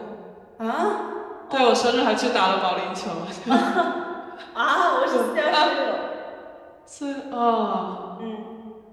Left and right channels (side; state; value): both; identical; correlation 1.00